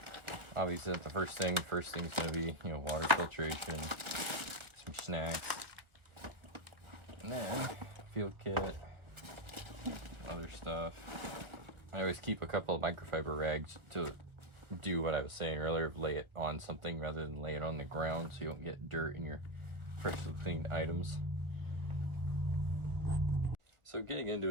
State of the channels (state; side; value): late; left; 1.6 ms